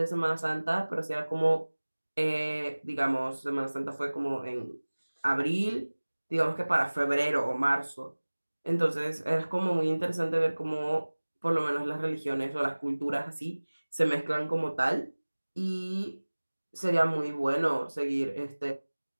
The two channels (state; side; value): inverted; both; correlation -1.00